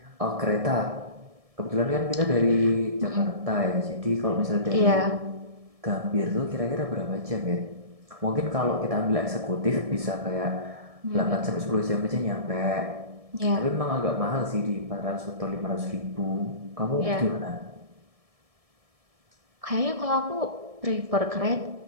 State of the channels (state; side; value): late; left; 1.7 ms